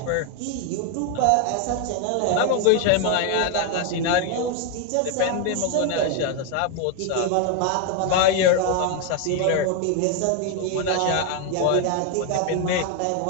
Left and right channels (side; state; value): both; different; correlation 0.01